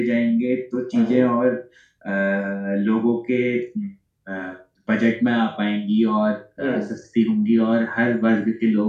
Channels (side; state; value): both; identical; correlation 1.00